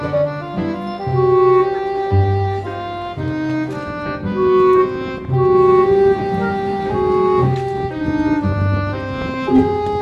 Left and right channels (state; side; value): identical; both; correlation 1.00